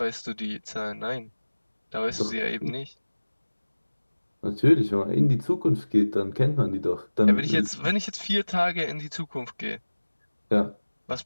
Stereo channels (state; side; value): inverted; both; correlation -1.00